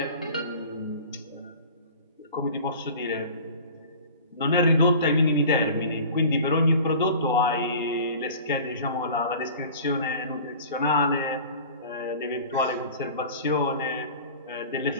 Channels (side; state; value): both; inverted; correlation -0.41